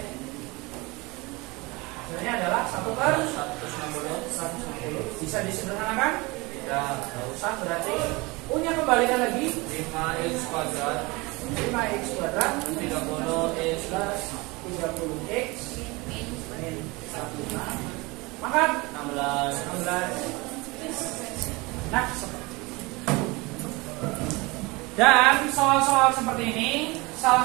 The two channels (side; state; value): left; quieter; 24.6 dB